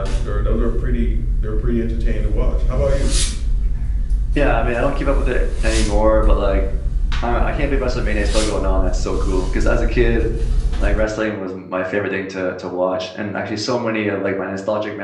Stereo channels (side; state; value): both; identical; correlation 1.00